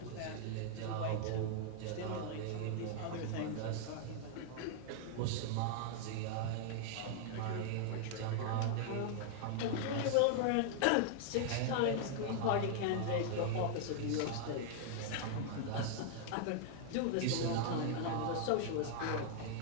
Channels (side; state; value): both; different; correlation -0.01